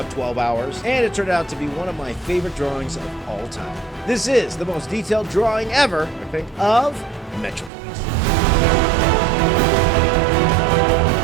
12 hours, and it turned out to be one of my favorite drawings of all time. This is the most detailed drawing ever, I think, of Metroplex.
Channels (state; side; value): drops out; left; at 7.7 s